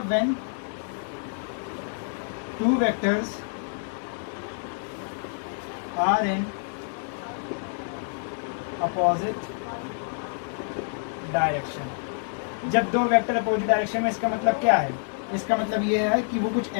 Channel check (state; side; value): silent; right; digital silence